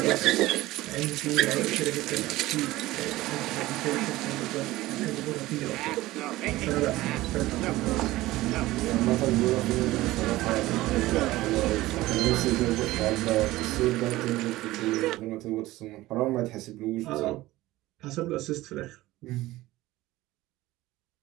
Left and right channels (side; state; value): left; quieter; 17.6 dB